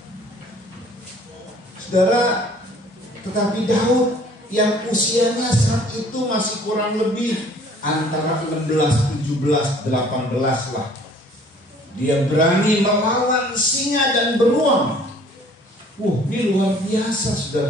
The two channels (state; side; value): normal; both; correlation 0.55